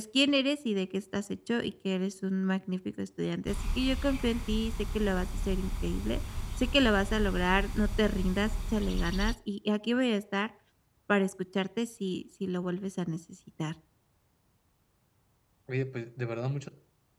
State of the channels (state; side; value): identical; both; correlation 1.00